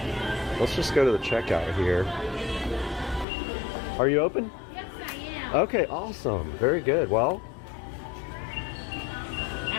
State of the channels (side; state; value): right; drops out; at 3.2 s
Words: let's just go to the checkout here. Are you open? Yes, I am. Okay, awesome. Very good. Well,